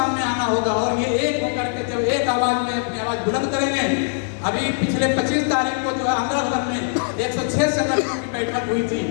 आना होगा और ये एक होकर के जब एक आवाज में अपनी आवाज बुलंद करेंगे। अभी पिछले 25 तारीख को जो है अमृतसर में 106 संगठनों की बैठक हुई थी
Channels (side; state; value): right; silent; 60 dB below the other